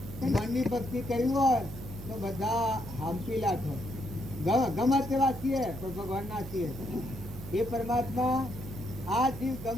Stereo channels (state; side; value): noise; right; hum, 11 dB below the sound